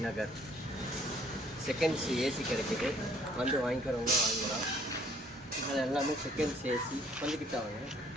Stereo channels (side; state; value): both; normal; correlation 0.60